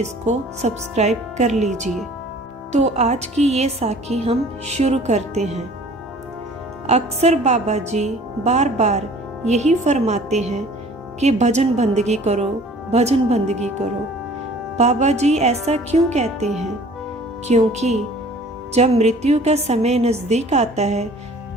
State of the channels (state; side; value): normal; both; correlation 0.50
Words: सब्सक्राइब कर लीजिए। तो आज की ये साखी हम शुरू करते हैं। अक्सर बाबा जी बार बार यही फरमाते हैं कि भजन बंदगी करो, भजन बंदगी करो। बाबा जी ऐसा क्यों कहते हैं? क्योंकि जब मृत्यु का समय नज़दीक आता है